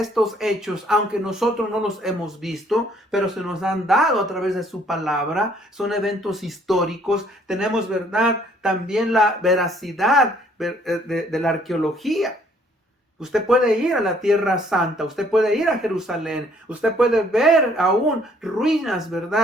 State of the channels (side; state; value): both; normal; correlation 0.62